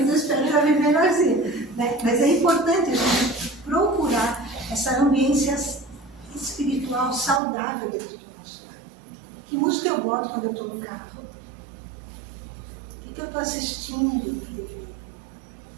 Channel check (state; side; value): drops out; left; at 7.4 s